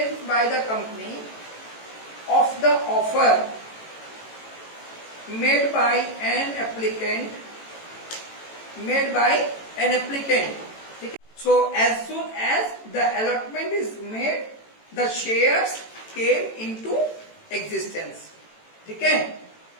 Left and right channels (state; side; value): late; right; 18 ms